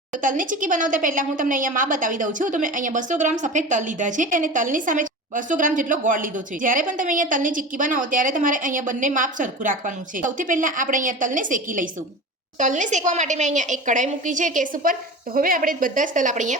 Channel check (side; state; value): both; normal; correlation 0.32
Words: તો તલની ચીક્કી બનાવતા પહેલા હું તમને અહીંયા માપ બતાવી દઉં છું. તો મેં અહીંયા 200 ગ્રામ સફેદ તલ લીધા છે અને તલની સામે 200 ગ્રામ જેટલો ગોળ લીધો છે. જ્યારે પણ તમે અહીંયા તલની ચીક્કી બનાવો ત્યારે તમારે અહીંયા બંને માપ સરખું રાખવાનું છે. સૌથી પહેલા આપણે અહીંયા તલને શેકી લઈશું. તલને શેકવા માટે મેં અહીંયા એક કઢાઈ મૂકી છે ગેસ ઉપર. તો હવે આપણે બધા જ તલ આપણે